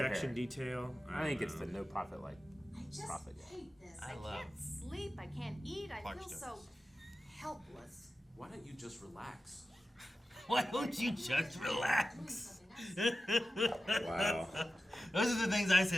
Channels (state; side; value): normal; both; correlation 0.94